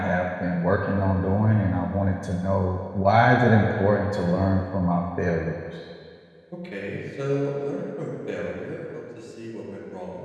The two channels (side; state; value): both; identical; correlation 1.00